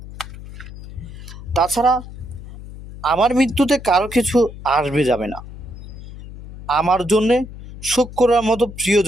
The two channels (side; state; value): left; noise; hum, 14 dB below the sound